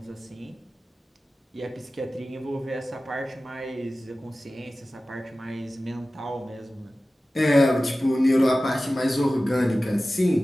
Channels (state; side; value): normal; both; correlation 0.96